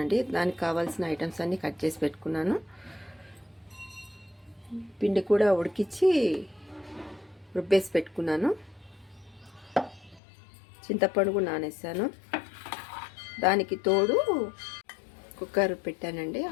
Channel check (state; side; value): drops out; right; at 10.2 s